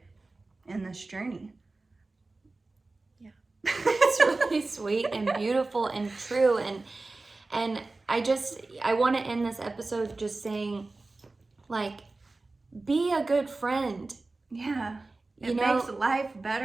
in this journey. Yeah. It's really sweet and beautiful and true. And I want to end this episode just saying, like, be a good friend. Yeah. It makes life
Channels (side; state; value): left; quieter; 3.4 dB